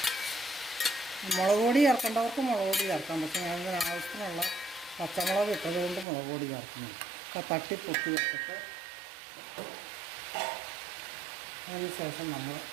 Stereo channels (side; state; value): left; drops out; at 6.1 s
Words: മുളക് പൊടി ചേർക്കേണ്ടവർക്ക് മുളക് പൊടി ചേർക്കാം. പക്ഷേ ഞാനിതിന് ആവശ്യത്തിനുള്ള പച്ചമുളക് ഇട്ടതുകൊണ്ട് മുളക് പൊടി ചേർക്കുന്നു. അപ്പോൾ തട്ടിപ്പൊട്ടി വെച്ചിട്ട് അതിന് ശേഷം നമ്മൾ